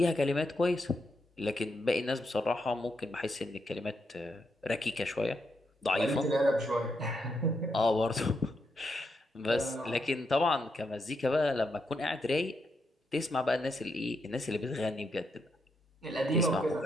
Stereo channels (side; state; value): both; normal; correlation 0.81